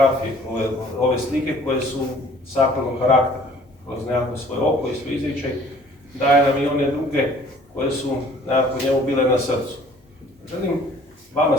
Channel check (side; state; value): both; normal; correlation 0.54